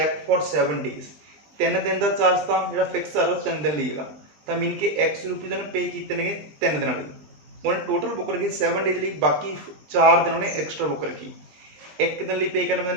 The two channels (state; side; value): late; left; 20 ms